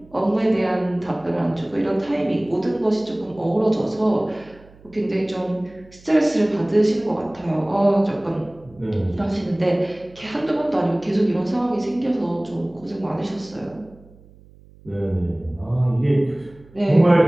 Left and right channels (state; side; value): noise; right; hum, 25 dB below the sound